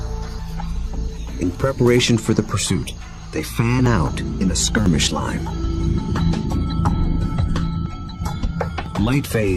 In preparation for the pursuit, they fan out in a skirmish line.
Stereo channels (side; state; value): both; identical; correlation 1.00